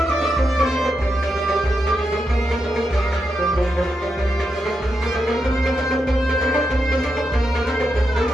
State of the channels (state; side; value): normal; both; correlation 0.85